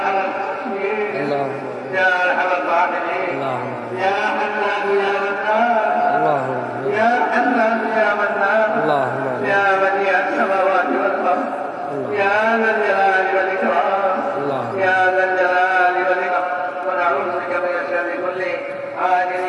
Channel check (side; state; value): both; identical; correlation 1.00